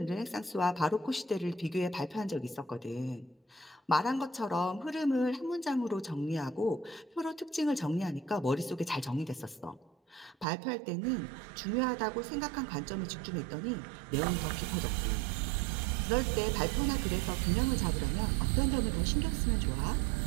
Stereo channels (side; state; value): left; drops out; at 10.5 s